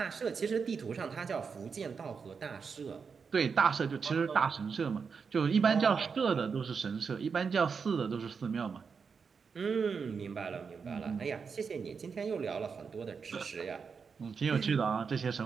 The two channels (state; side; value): quieter; left; 5.7 dB